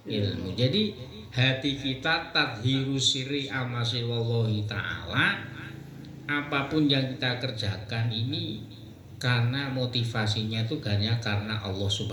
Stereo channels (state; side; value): identical; both; correlation 1.00